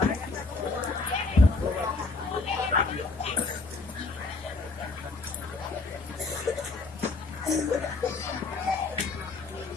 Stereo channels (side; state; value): right; quieter; 3.6 dB